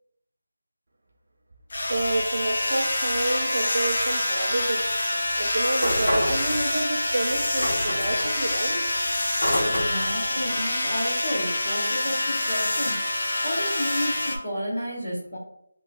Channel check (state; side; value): inverted; both; correlation -0.94